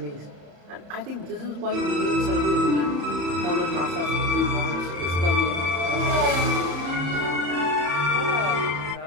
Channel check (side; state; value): left; late; 34 ms